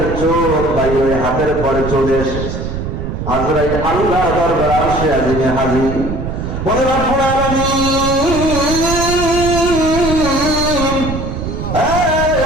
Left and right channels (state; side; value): noise; right; rumble, 5 dB below the sound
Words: চোখ বাইরে হাতের পরে চলে এসেছে। আজরাইল আল্লাহর দরবারে আরশে আজিমে হাজির। বলে রব্বুল আলামিন,